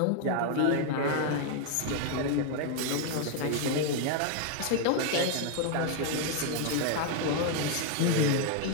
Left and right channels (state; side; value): different; both; correlation 0.00